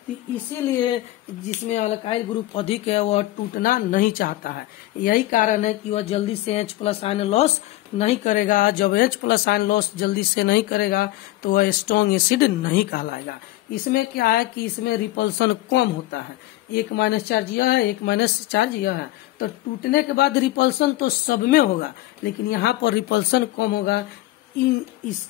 तो इसीलिए जिसमें अल्काइल ग्रुप अधिक है वह टूटना नहीं चाहता है। यही कारण है कि वह जल्दी से H+ आयन लॉस नहीं करेगा। जब H+ आयन लॉस जल्दी से नहीं करेगा तो वह स्ट्रॉन्ग एसिड नहीं कहलाएगा। इसमें क्या है कि इसमें रिपल्सन कम होता है। 1 माइनस चार्ज यह है, 1 माइनस चार्ज यह है। तो टूटने के बाद रिपल्सन तो सब में होगा, लेकिन यहाँ पर रिपल्सन कम होगा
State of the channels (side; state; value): right; quieter; 17.0 dB